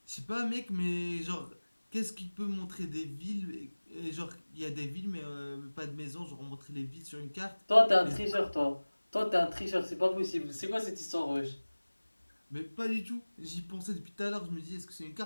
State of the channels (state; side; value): inverted; both; correlation -1.00